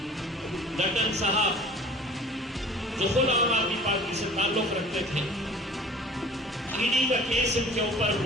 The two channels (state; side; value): normal; both; correlation 0.45